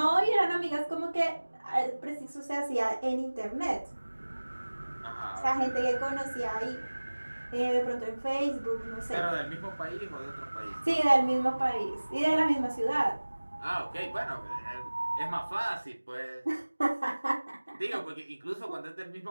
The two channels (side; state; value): both; inverted; correlation -1.00